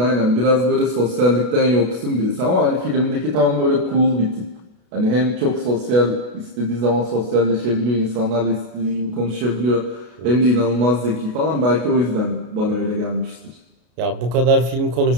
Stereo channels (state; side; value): late; left; 33 ms